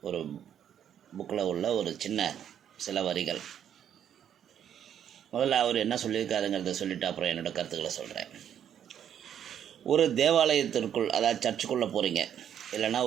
ஒரு புக்கில் உள்ள ஒரு சில வரிகள். முதல்ல அவர் என்ன சொல்லியிருக்காருங்கிறத சொல்லிவிட்டு அப்புறம் என்னோடய கருத்துக்களை சொல்கிறேன். ஒரு தேவாலயத்திற்குள், அதாவது சர்ச்சுக்குள்ளே போகிறீங்க, இல்லைன்னா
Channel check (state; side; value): quieter; left; 9.4 dB